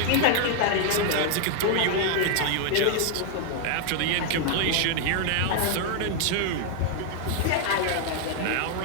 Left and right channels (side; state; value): both; different; correlation 0.00